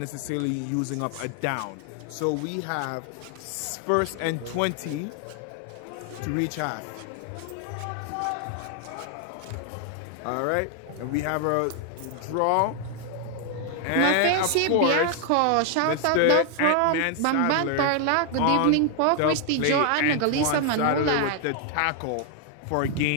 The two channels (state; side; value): different; both; correlation 0.00